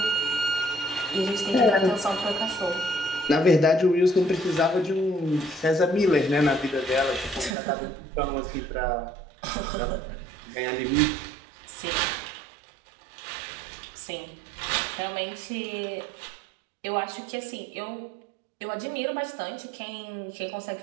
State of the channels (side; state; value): left; drops out; at 7.6 s